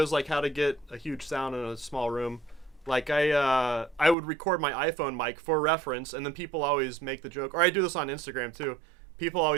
like how to get a huge sound in a small room. Like I would record my iPhone mic for reference, and then people always make the joke, or I do this on Instagram too. People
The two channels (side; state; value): left; drops out; at 4.2 s